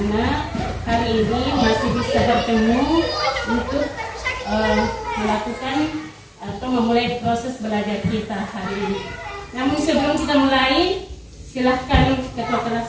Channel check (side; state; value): both; identical; correlation 1.00